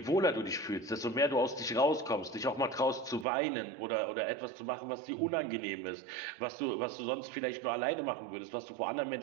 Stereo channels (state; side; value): drops out; left; at 3.2 s